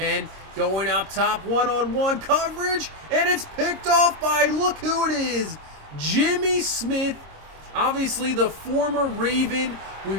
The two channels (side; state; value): left; late; 26 ms